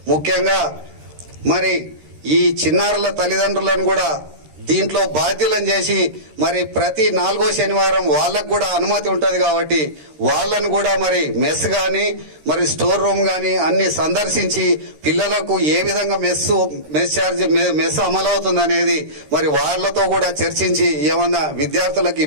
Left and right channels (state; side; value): late; left; 13 ms